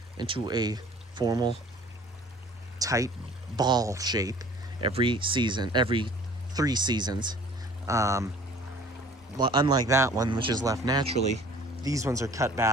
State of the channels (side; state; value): both; normal; correlation 0.49